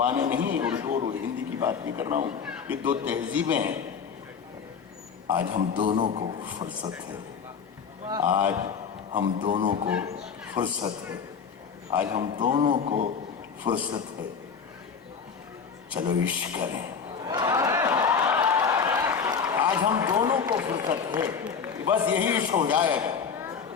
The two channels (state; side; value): quieter; right; 6.3 dB